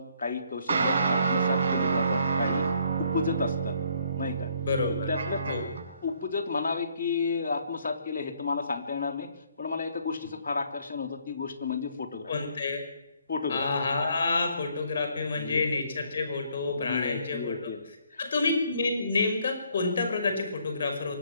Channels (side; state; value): both; inverted; correlation -0.66